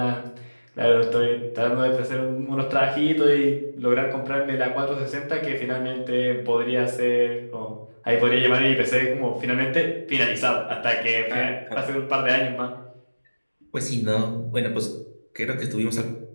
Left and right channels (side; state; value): both; inverted; correlation -1.00